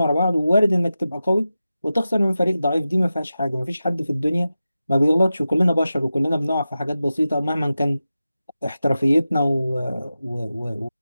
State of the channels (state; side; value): inverted; both; correlation -0.93